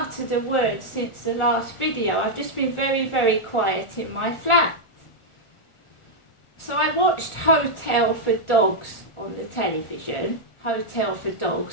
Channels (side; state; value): right; late; 1.4 ms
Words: a word since the last video. I've just been very, very quiet in my flat. So I watched Hotel for Dogs on the television. Hotel for